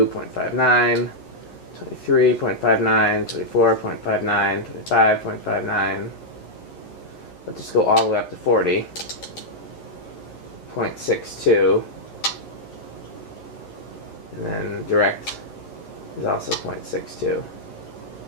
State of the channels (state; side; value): late; right; 11 ms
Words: 23.59, 24.59, 25.59. Let's just go all the way up to 40.62, and then direct is also 0.62.